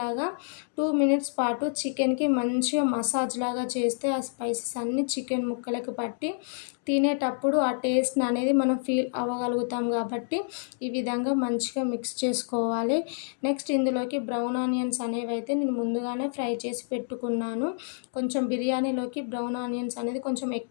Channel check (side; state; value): right; silent; digital silence